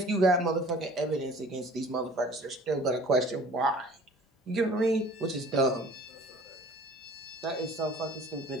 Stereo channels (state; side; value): normal; both; correlation 0.48